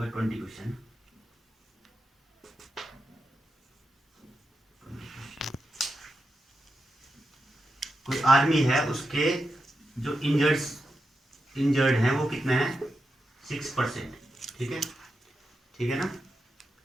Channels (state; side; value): normal; both; correlation 0.88